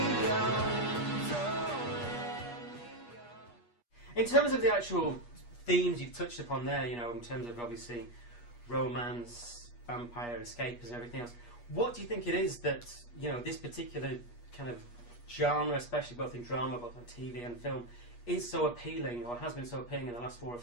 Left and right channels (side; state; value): right; late; 8.4 ms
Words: In terms of the actual themes you've touched upon there, you know, in terms of obviously romance, vampire, escapism, and everything else, what do you think it is that, you know, this particular kind of genre, especially both in drama, both on TV and film, is so appealing, or has been so appealing in the last 4 or